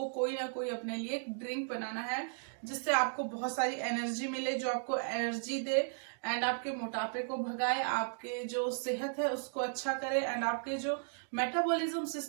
कोई ना कोई अपने लिए ड्रिंक बनाना है, जिससे आपको बहुत सारी एनर्जी मिले, जो आपको एनर्जी दे एंड आपके मोटापे को भगाए, आपके जो सेहत है उसको अच्छा करे एंड आपके जो मेटाबॉलिज्म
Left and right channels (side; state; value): left; silent; digital silence